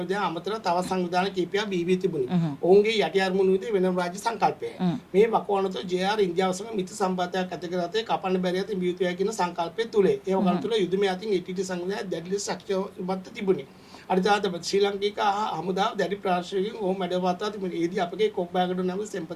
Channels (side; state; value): both; identical; correlation 1.00